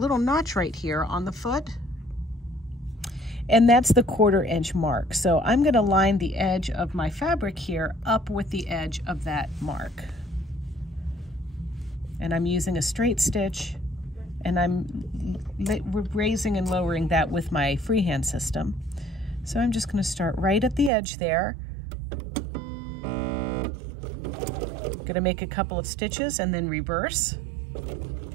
notch right here on the foot, and that's the 1/4 inch mark. So I'm going to line the edge of my fabric here up with the edge of that mark. And I'm using a straight stitch, and I'm raising and lowering that with my freehand system. So I'm just going to start right at the edge there. Going to make a couple of stitches and then reverse.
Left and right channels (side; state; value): left; drops out; at 20.9 s